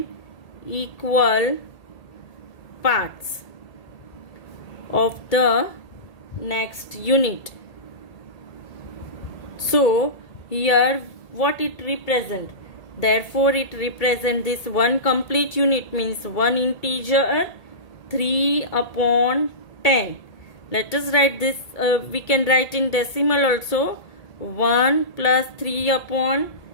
equal parts of the next unit. So here what it represent? Therefore it represent this one complete unit means one integer 3/10. Let us write this, we can write in decimal also. 1 plus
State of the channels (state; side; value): late; right; 1.8 ms